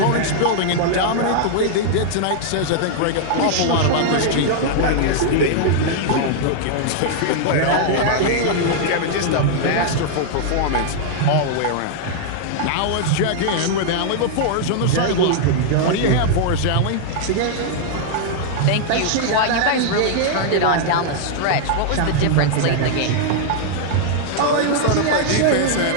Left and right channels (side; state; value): both; different; correlation -0.01